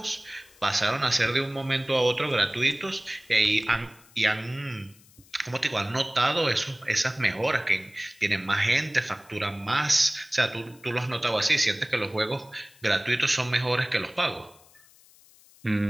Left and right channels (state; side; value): noise; left; hiss, 27 dB below the sound